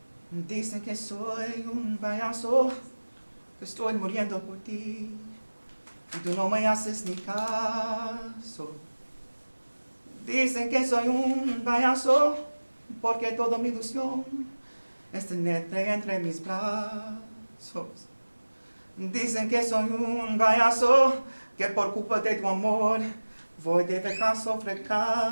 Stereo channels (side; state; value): both; inverted; correlation -1.00